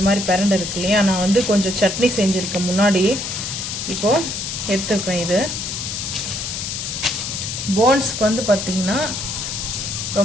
மாதிரி பிரண்டை இருக்கு இல்லையா, நான் வந்து கொஞ்சம் சட்னி செஞ்சுருக்கேன் முன்னாடி, இப்போது எடுத்துருக்கேன். இது போன்ஸ்க்கு வந்து பார்த்திங்கன்னா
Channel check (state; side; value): noise; left; hiss, 4 dB below the sound